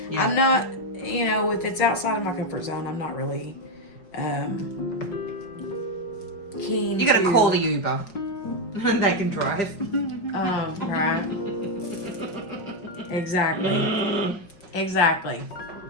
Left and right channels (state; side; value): late; right; 5.4 ms